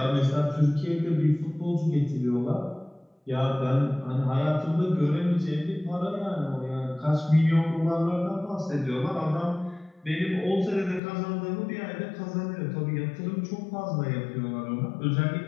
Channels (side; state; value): right; drops out; at 11.0 s